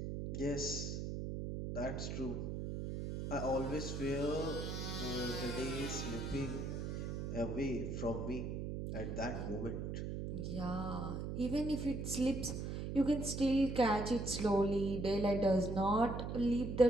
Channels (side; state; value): right; noise; hum, 4 dB below the sound